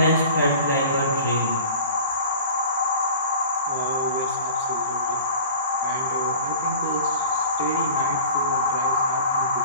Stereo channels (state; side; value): inverted; both; correlation -0.40